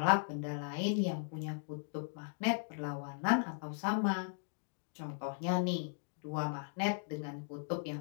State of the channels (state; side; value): silent; right; digital silence